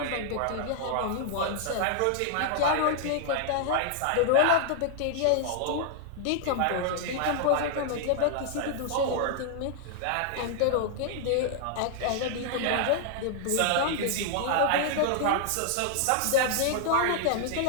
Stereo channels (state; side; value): different; both; correlation 0.00